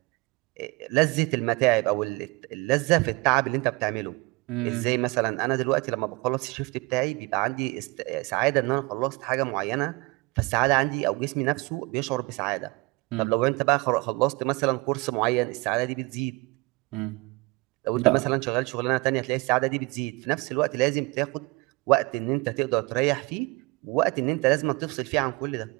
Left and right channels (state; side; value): quieter; left; 24.7 dB